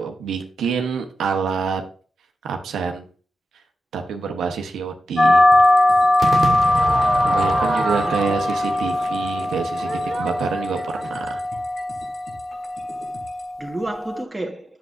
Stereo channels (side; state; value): both; normal; correlation 0.91